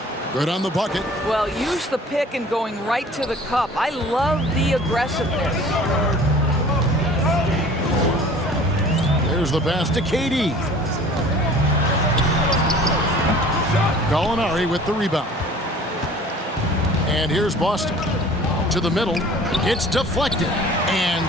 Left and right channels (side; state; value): both; normal; correlation 0.47